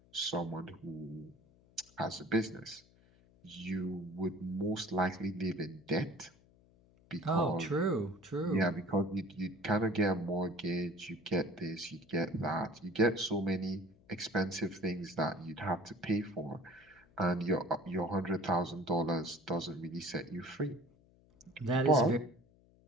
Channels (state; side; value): noise; left; hum, 29 dB below the sound